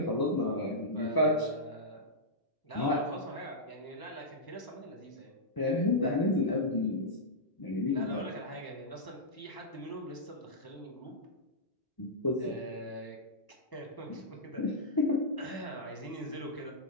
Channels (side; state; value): right; late; 1.0 ms